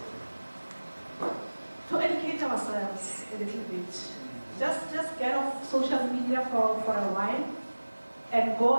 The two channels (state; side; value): inverted; both; correlation -1.00